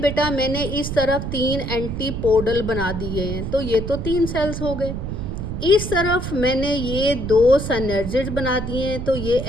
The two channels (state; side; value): noise; right; rumble, 5 dB below the sound